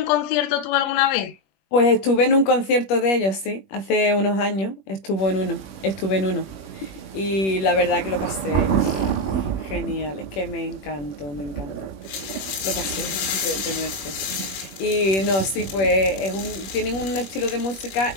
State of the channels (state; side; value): late; right; 21 ms